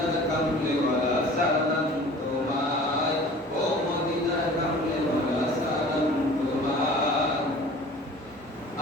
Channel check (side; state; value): both; normal; correlation 0.45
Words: কামলিওয়ালা সালাম তোমায়, ও মদিনার কামলিওয়ালা সালাম তোমায়।